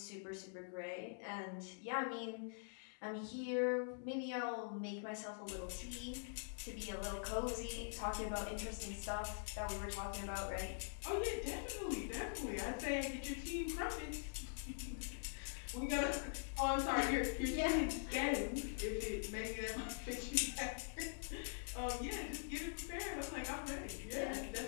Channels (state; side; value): silent; right; digital silence